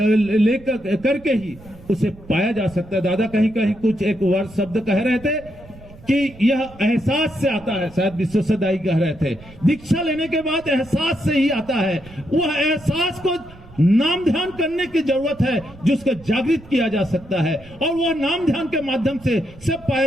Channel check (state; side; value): noise; right; rumble, 21 dB below the sound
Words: करके ही उसे पाया जा सकता है। दादा कहीं कहीं कुछ एक वर्ड शब्द कह रहे थे कि यह एहसास से आता है, शायद विश्वसदाई कह रहे थे, दीक्षा लेने के बाद एहसास से ही आता है। वह एहसास को नाम ध्यान करने की जरूरत है, जिसको जागृत किया जा सकता है, और वह नाम ध्यान के माध्यम से सब